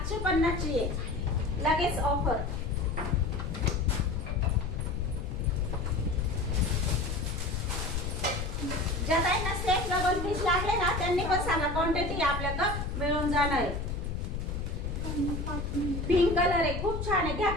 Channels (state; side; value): noise; left; rumble, 3 dB below the sound